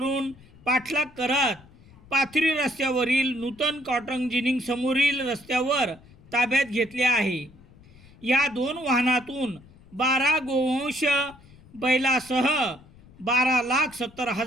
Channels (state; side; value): noise; left; rumble, 24 dB below the sound